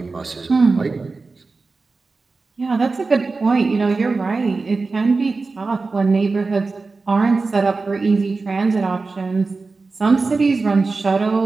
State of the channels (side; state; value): left; quieter; 3.9 dB